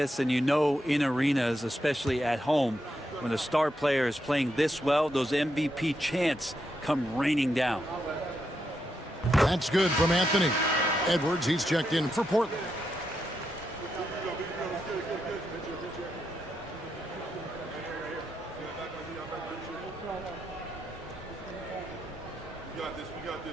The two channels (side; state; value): both; normal; correlation 0.83